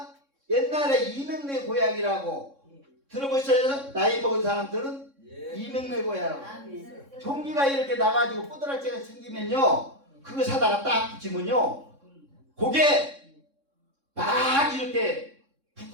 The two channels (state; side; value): late; left; 3.6 ms